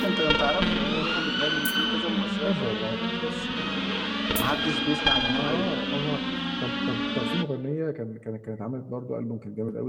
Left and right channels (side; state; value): both; identical; correlation 1.00